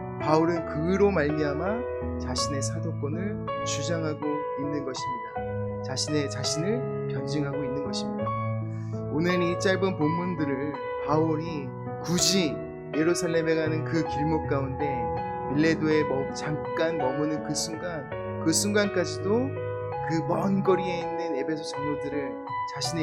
바울은 그로 말미암아 자신의 사도권을 주장하고 있는 것입니다. 자신을 변증하고 있는 것입니다. 오늘 이 짧은 본문들을 바울이 굳이 예루살렘에 가는 그 길목 가운데 밀레도에 잠깐 머무는 그 순간까지도 그 먼 거리에 있는 에베소 장로들을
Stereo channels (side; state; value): both; identical; correlation 1.00